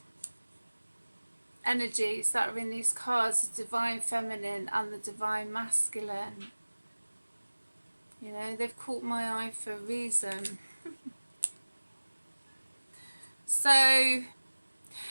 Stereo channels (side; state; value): both; inverted; correlation -1.00